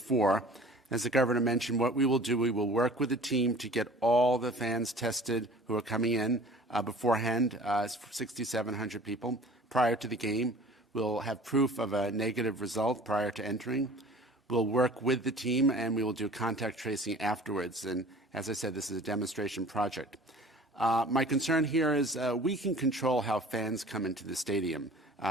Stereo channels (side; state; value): both; normal; correlation 0.46